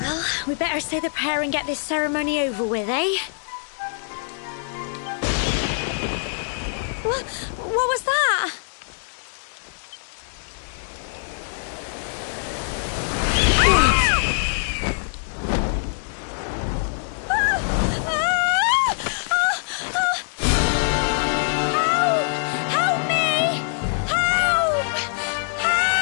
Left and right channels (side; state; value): right; silent; digital silence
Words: we better say the prayer and get this ceremony over with, eh? What was that?